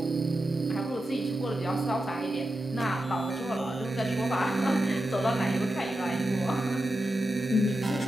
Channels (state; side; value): normal; both; correlation 0.90